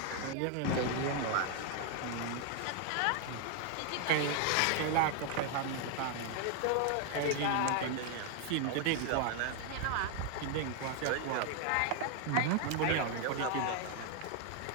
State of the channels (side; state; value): both; different; correlation 0.00